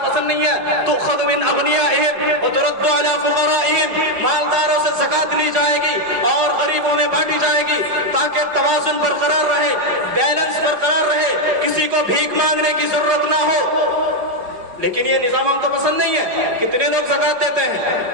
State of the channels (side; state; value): left; late; 4.8 ms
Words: पसंद नहीं है। तो खुद मिन अगनियाहिम व तुरद्दु अला फुक़राइहिम, मालदारों से ज़कात ली जाएगी और गरीबों में बांटी जाएगी ताकि तवाज़ुन बरकरार रहे, बैलेंस बरकरार रहे, किसी को भीख मांगने की जरूरत ना हो। लेकिन ये निजाम हमको पसंद नहीं है। कितने लोग ज़कात देते हैं?